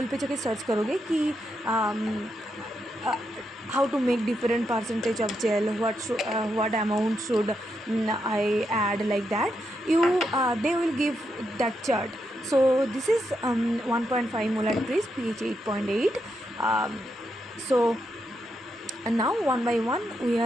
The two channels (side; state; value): both; normal; correlation 0.82